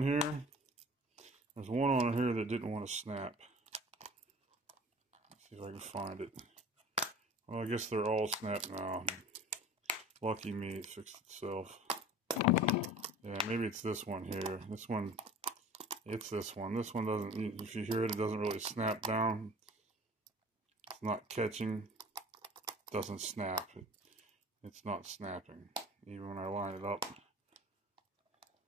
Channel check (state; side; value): normal; both; correlation 0.43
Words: here, there's one on here that didn't want to snap. Let's see if I can find it. Well, I guess they're all snapped now. Lucky me, it fixed itself. Yeah, maybe it's this one here. This one, it's this one. This one doesn't, if you hear it, it doesn't really snap down. It's not catching. It doesn't snap. It's not snapping, even when I line it up.